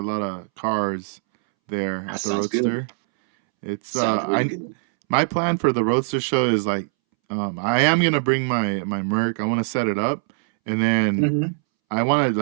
lot of cars there at the Roadster. Good. It's really good. My plan for the Roadster show is like, I am gonna bring my Merc. I want to set it up, and then I want to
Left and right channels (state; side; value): silent; left; 64 dB below the other